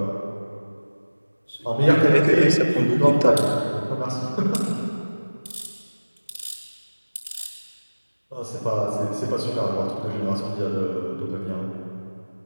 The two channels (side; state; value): both; inverted; correlation -1.00